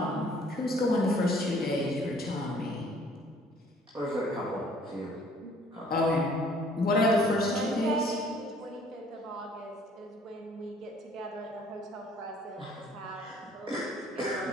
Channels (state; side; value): normal; both; correlation 0.57